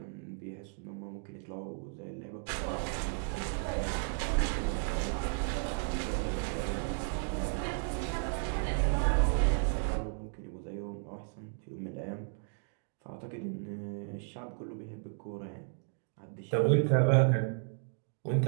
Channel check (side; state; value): left; silent; 55 dB below the other